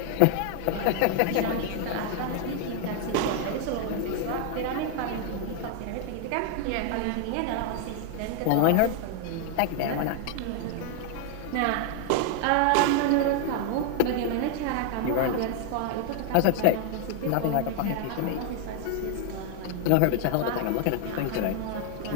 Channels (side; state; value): both; different; correlation 0.00